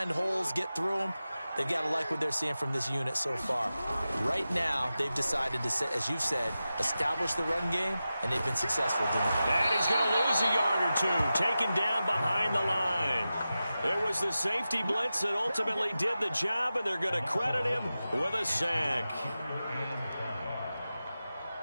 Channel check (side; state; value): both; inverted; correlation -0.93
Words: holes, get through them, they've got to like what they're seeing from this unit so far. Right now, they've decided to, as you've said, establish the run game, and they've been successful doing it. And he's going to lose a yard or two, taken down behind the line. It was the safety blitz that ultimately did the job, and they're going to credit him with a sack.